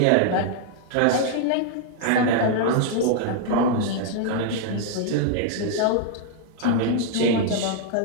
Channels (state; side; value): different; both; correlation -0.01